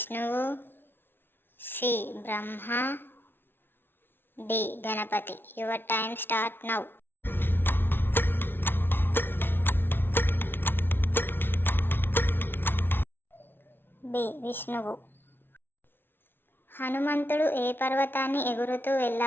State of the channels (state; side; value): late; right; 0.11 ms